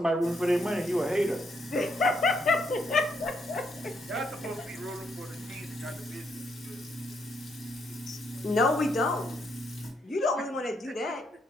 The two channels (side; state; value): both; normal; correlation 0.76